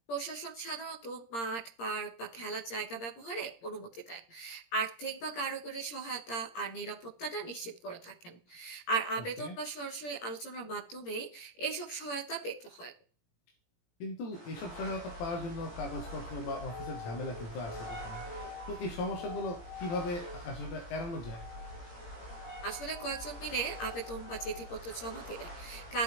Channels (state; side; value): late; right; 17 ms